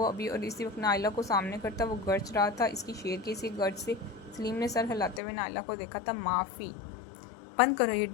अभी। और इसी वक्त नायला को सामने करता वो गर्ज रहा था। इसकी शेर की इसी गर्ज से सलीम ने सर हिलाते हुए नायला को देखा था। माफ़ी बंद करो ये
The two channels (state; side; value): drops out; right; at 5.2 s